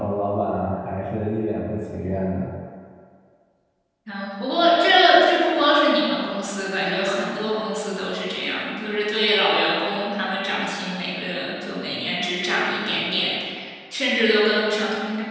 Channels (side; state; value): both; identical; correlation 1.00